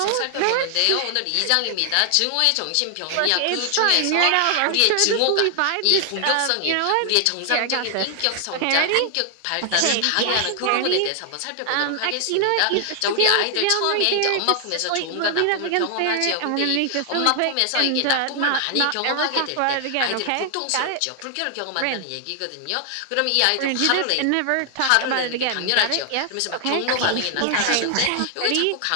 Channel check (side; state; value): both; different; correlation 0.00